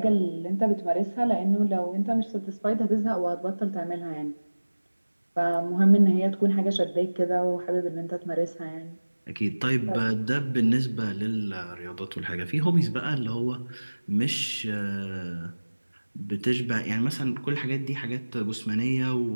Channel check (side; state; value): both; inverted; correlation -1.00